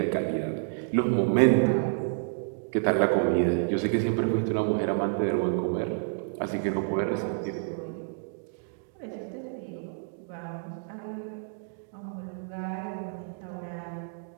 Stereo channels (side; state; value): left; silent; digital silence